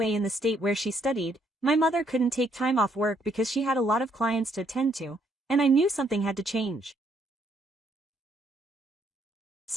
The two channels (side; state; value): both; normal; correlation 0.70